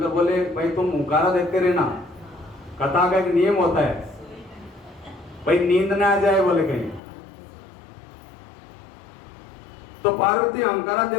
बोले भाई तुम हुंकारा देते रहना, कथा का एक नियम होता है भाई, नींद ना आ जाए बोले कहीं। तो पार्वती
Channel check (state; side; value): drops out; right; at 7.0 s